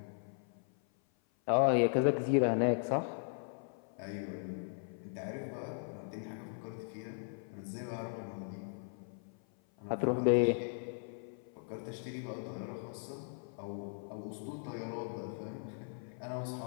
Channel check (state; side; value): silent; right; 52 dB below the other